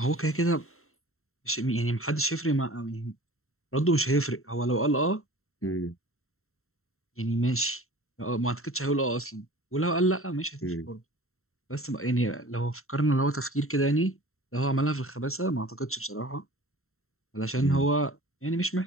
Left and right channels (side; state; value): right; late; 0.62 ms